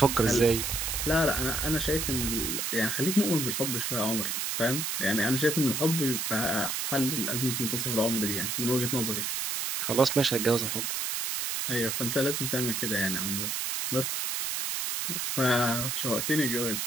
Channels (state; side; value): noise; right; hiss, 1 dB below the sound